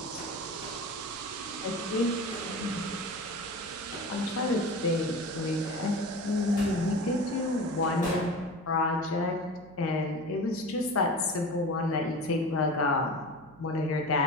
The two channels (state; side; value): noise; right; hum, 23 dB below the sound